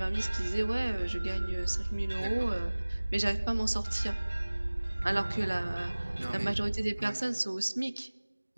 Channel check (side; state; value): both; inverted; correlation -1.00